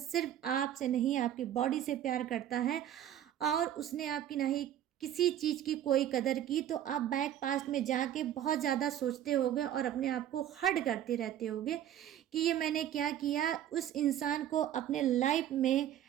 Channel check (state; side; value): quieter; left; 11.1 dB